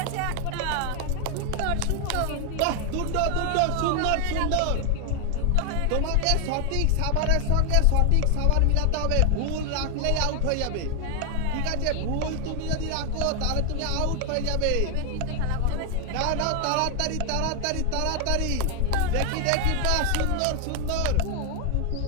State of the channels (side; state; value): both; different; correlation 0.01